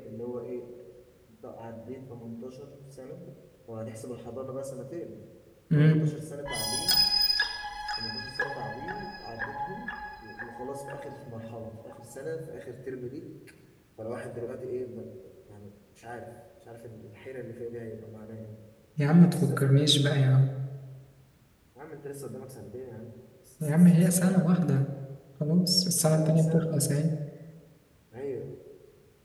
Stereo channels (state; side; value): identical; both; correlation 1.00